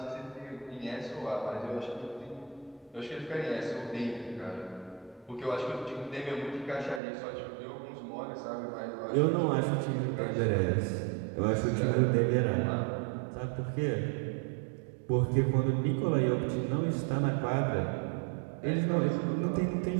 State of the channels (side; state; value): left; drops out; at 7.0 s